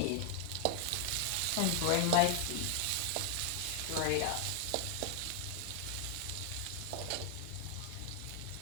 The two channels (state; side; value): different; both; correlation 0.00